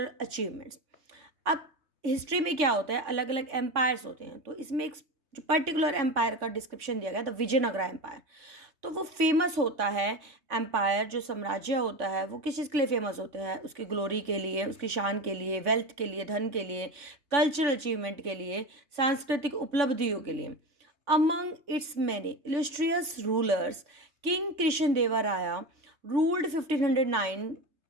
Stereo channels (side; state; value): left; late; 3.5 ms